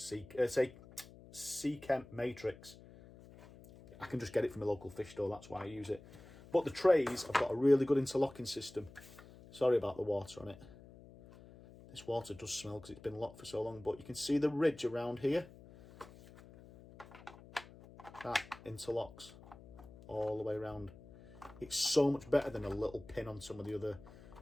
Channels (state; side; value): noise; left; hum, 19 dB below the sound